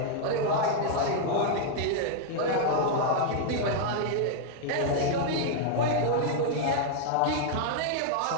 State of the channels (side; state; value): both; different; correlation 0.00